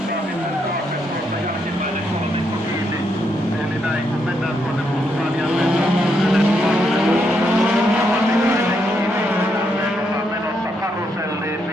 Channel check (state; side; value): normal; both; correlation 0.78